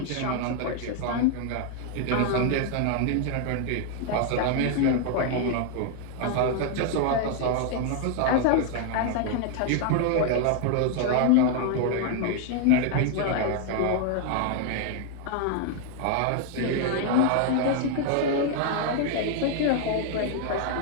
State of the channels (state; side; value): different; both; correlation 0.00